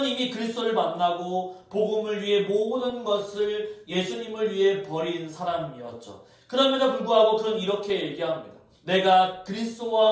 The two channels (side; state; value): both; identical; correlation 1.00